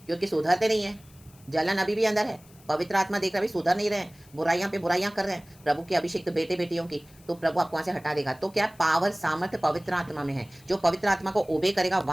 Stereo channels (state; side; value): noise; left; hiss, 27 dB below the sound